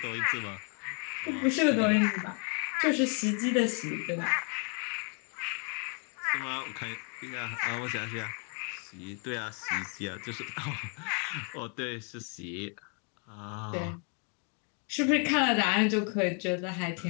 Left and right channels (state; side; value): quieter; right; 39.1 dB